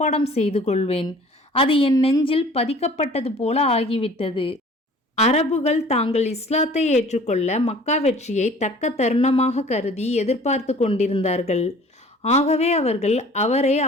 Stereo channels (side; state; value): both; normal; correlation 0.49